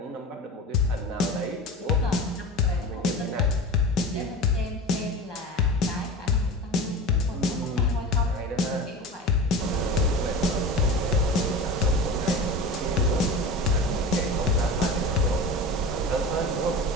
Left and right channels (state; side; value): normal; both; correlation 0.31